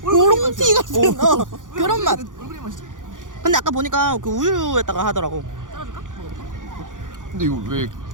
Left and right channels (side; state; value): left; late; 0.88 ms